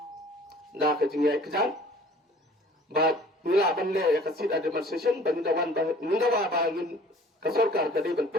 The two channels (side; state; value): both; normal; correlation 0.51